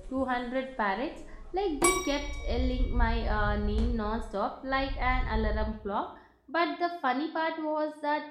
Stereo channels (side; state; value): both; identical; correlation 1.00